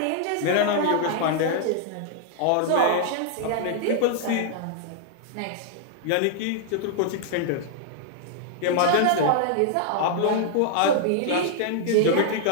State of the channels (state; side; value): different; both; correlation -0.01